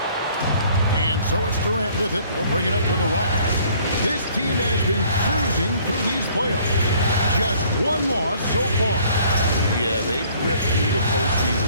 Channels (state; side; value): inverted; both; correlation -0.57